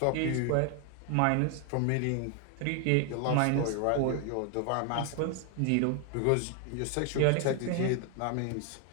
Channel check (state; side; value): different; both; correlation 0.00